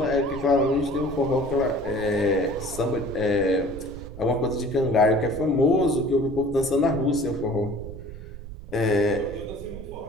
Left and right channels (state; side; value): noise; right; rumble, 13 dB below the sound